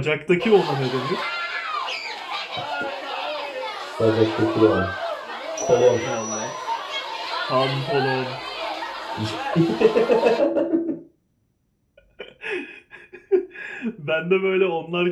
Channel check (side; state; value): both; identical; correlation 1.00